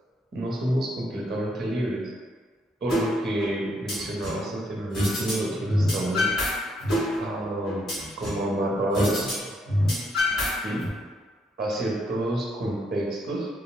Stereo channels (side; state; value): both; normal; correlation 0.74